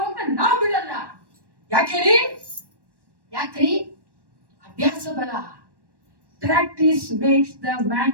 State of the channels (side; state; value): left; late; 1.1 ms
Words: ನಾವು ಬಿಡಲ್ಲ. ಯಾಕ್ರಿ? ಅಭ್ಯಾಸ ಬಲ. Practice makes the man